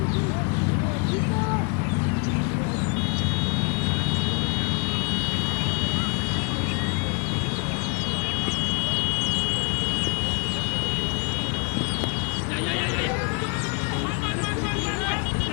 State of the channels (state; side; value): quieter; right; 34.9 dB